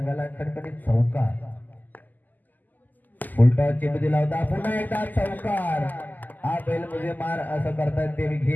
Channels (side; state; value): right; late; 0.084 ms